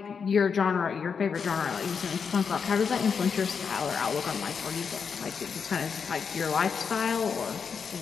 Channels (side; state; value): right; quieter; 6.2 dB